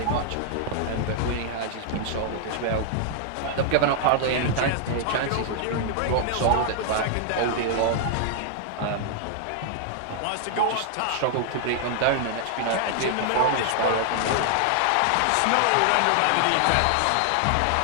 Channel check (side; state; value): both; different; correlation 0.00